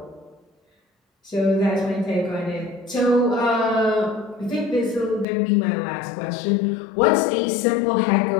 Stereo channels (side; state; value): right; drops out; at 5.2 s